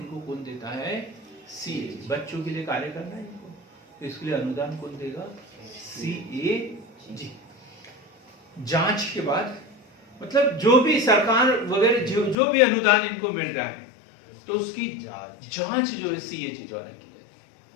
कौन देता है? सीएजी। बच्चों के लिए कार्य करना है इनको, तो इसके लिए अनुदान कौन देगा? सीएजी। जांच के बाद मतलब जो भी सरकार वगैरह जो भी अनुदान इनको मिल रहा है, तो उसकी जांच जो है सीएजी द्वारा की जाती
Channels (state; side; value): drops out; right; at 12.4 s